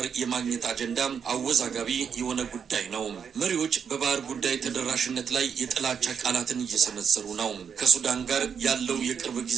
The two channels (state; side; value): quieter; left; 7.1 dB